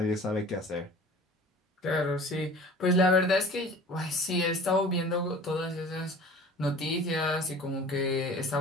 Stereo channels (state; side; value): normal; both; correlation 0.44